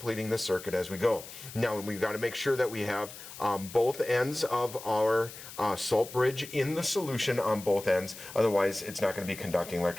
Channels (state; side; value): noise; left; hiss, 14 dB below the sound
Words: the circuit as we go. Now we've got to make sure that we have both ends of our salt bridge in the solution on both ends, otherwise it's not going to be conducting